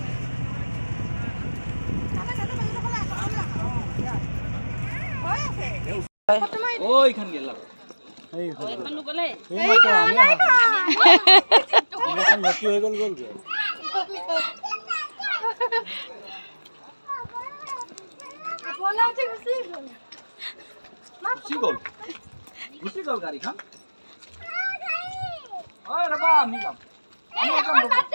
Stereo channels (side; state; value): both; inverted; correlation -1.00